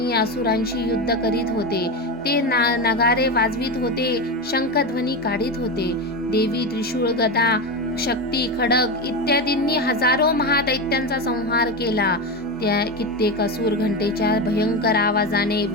असुरांशी युद्ध करीत होते. ते नगारे वाजवित होते, शंखध्वनी काढीत होते. देवी त्रिशूळ, गदा, शक्ती, खडग इत्यादींनी हजारो महादैत्यांचा संहार केला. त्या कित्येक असुर घंटेच्या भयंकर आवाजाने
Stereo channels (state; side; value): normal; both; correlation 0.17